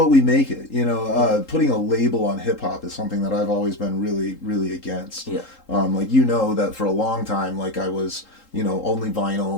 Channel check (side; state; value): right; late; 3.8 ms